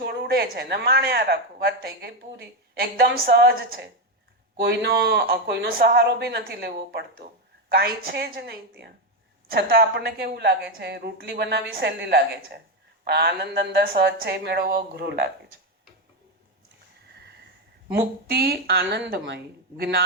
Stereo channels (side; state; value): both; normal; correlation 0.08